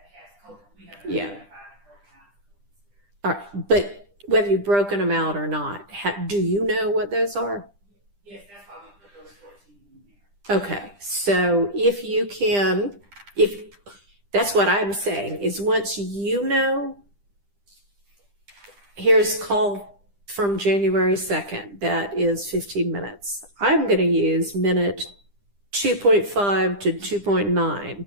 Yeah. All right, but whether you've broken them out or not, do you know what those are? Yes, that's why we put those 14 in there. Okay, so if you can, if that's what I'm saying, is once you know, here's call from January 2nd, that is 15 minutes. I'm going to use minute 2.5 to 2.9.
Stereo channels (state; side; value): late; left; 10 ms